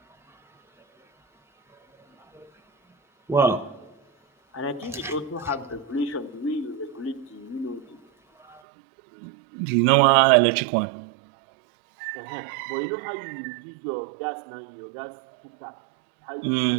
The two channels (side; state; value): left; drops out; at 8.6 s